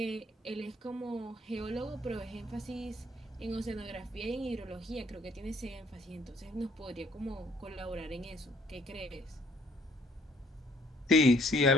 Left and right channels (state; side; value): normal; both; correlation 0.62